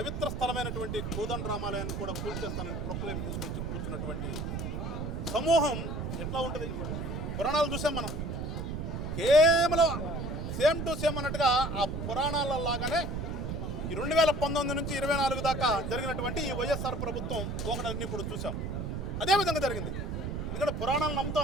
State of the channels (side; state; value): right; noise; rumble, 3 dB below the sound